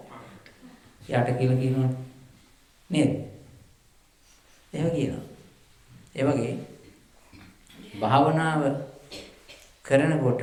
යට කියලා කියනවා නේද? එහෙම කියනවා. ඒ වගේ භාවනාව කරනකොට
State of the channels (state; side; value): identical; both; correlation 1.00